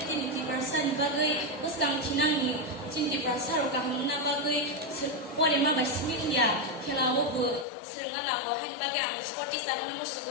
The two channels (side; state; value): right; drops out; at 7.7 s